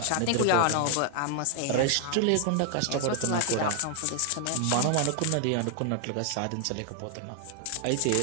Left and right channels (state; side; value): different; both; correlation 0.00